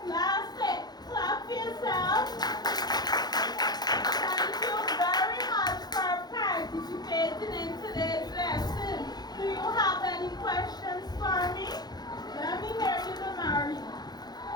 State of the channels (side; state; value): right; late; 0.19 ms